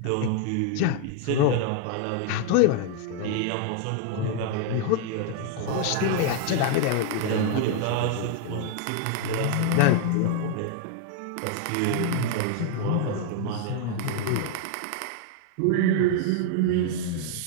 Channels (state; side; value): different; both; correlation 0.00